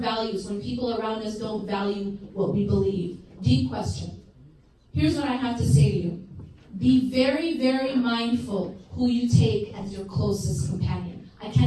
when people around us don't value what we believe? Deep question. Here's what I have to say to you. Be very, very mindful who you take as your closest companion. I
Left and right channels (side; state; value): both; identical; correlation 1.00